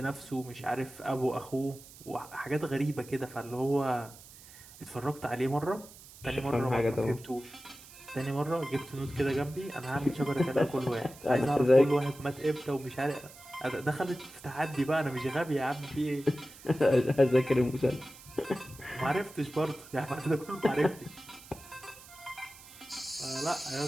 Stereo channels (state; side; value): noise; right; hiss, 19 dB below the sound